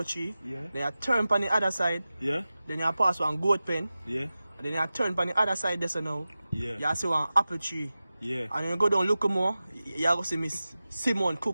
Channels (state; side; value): inverted; both; correlation -0.95